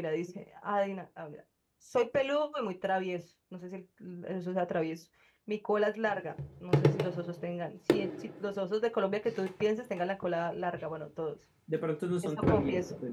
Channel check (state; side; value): identical; both; correlation 1.00